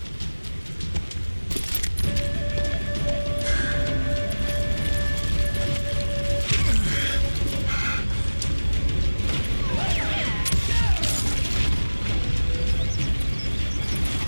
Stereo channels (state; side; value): inverted; both; correlation -1.00